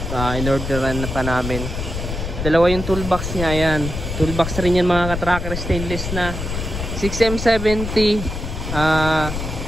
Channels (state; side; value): noise; left; rumble, 5 dB below the sound